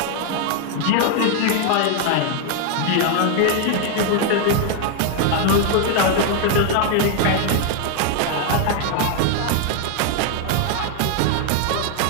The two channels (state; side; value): different; both; correlation 0.01